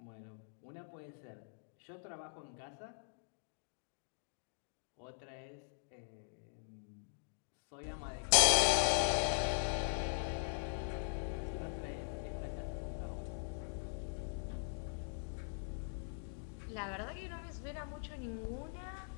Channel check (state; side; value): silent; right; digital silence